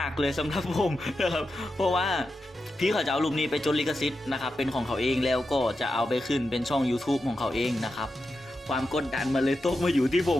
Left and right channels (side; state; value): both; normal; correlation 0.89